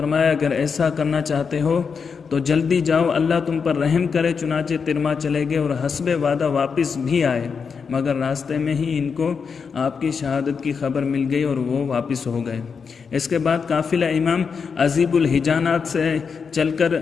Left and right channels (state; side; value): quieter; right; 5.8 dB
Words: اگر ایسا کرنا چاہتے ہو تو جلدی جاؤ، اللہ تم پر رحم کرے۔ چنانچہ ترما چلے گئے اور حسب وعدہ واپس بھی آئے، مگر راستے میں ہی ان کو آپ کی شہادت کی خبر مل گئی اور وہ واپس ہو گئے۔ اس کے بعد قافلہ امام عزیب الحجانات سے چل کر